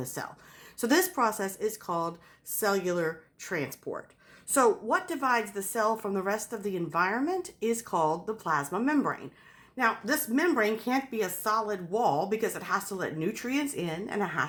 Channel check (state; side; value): identical; both; correlation 1.00